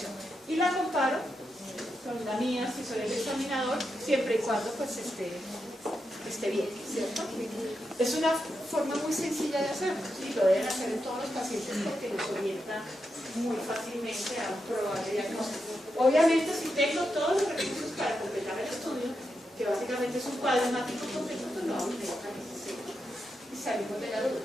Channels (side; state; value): both; normal; correlation 0.86